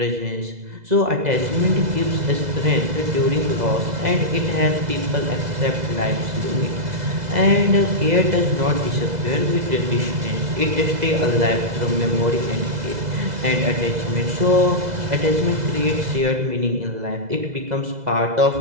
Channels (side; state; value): left; late; 2.0 ms